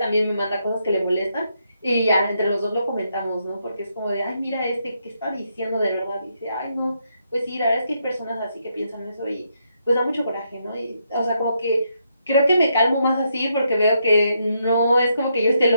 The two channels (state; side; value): inverted; both; correlation -0.78